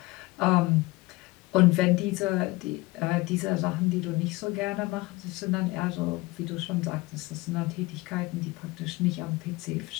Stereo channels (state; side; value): quieter; right; 21.5 dB